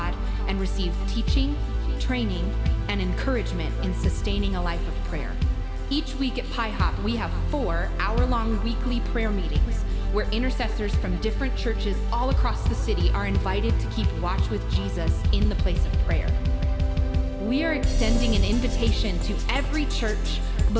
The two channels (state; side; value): identical; both; correlation 1.00